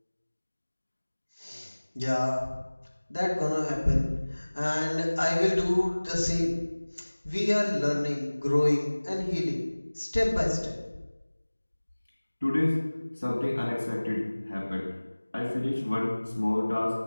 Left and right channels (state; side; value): inverted; both; correlation -1.00